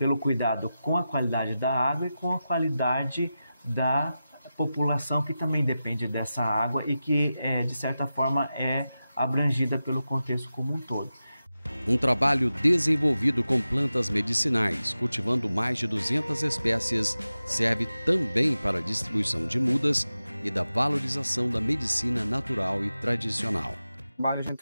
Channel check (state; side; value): inverted; both; correlation -0.93